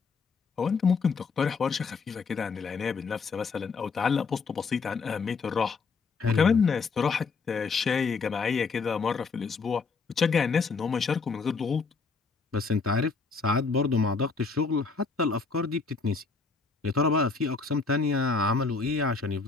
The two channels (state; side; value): quieter; right; 4.7 dB